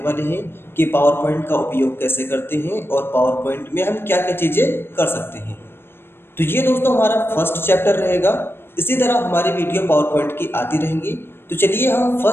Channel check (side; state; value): right; late; 0.11 ms